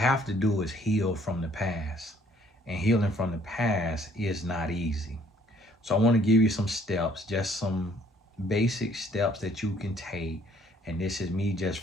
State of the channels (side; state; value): both; normal; correlation 0.61